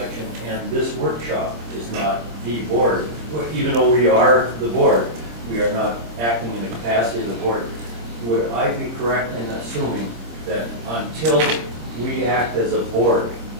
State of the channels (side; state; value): left; late; 26 ms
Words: and this workshop is not the board. Even though we are the board, we are not acting in the capacity of the board. Would I be correct in assuming that until we act as a board